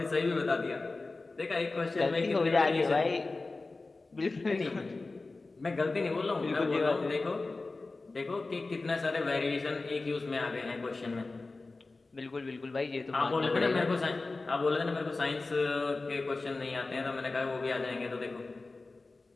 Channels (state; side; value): quieter; right; 3.5 dB